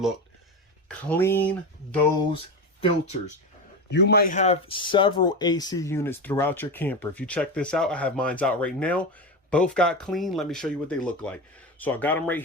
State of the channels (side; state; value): both; normal; correlation 0.20